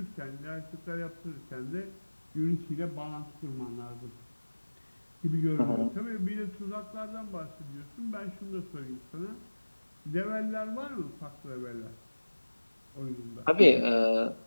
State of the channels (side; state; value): both; inverted; correlation -1.00